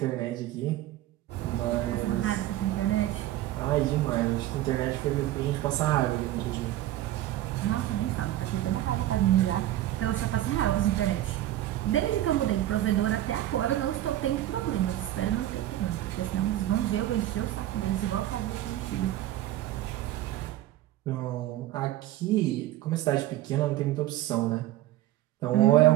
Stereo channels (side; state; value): left; quieter; 14.2 dB